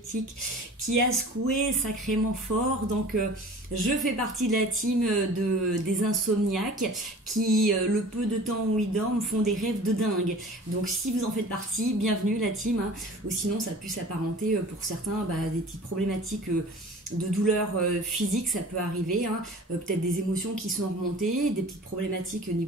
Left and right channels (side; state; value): both; normal; correlation 0.43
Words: qui a secoué sacrément fort. Donc je fais partie de la team des insomniaques qui, le peu de temps où ils dorment, font des rêves de dingue. Donc si vous en faites partie, bienvenue la team, hein. Ou sinon ça peut s'apparenter pour certains des petites problématiques de douleurs physiques, ça peut arriver, hein. Peut-être des émotions qui sont remontées, des petites problématiques au